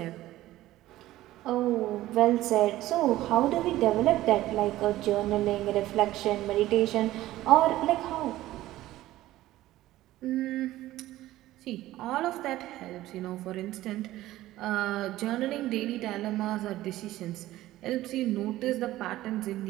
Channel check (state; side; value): quieter; left; 15.6 dB